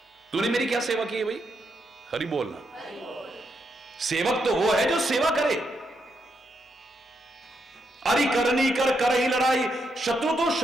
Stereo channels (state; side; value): normal; both; correlation 0.80